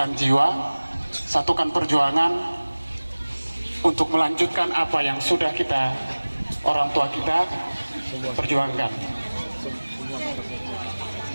jiwa, satukan perjuangan untuk melanjutkan apa yang sudah kita, orang tua kita, perjuangkan.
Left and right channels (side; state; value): both; inverted; correlation -1.00